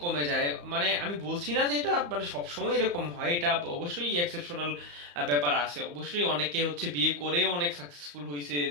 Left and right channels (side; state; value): left; late; 34 ms